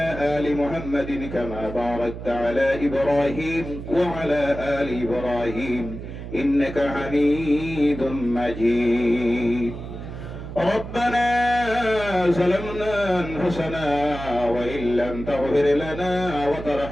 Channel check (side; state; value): right; noise; hum, 10 dB below the sound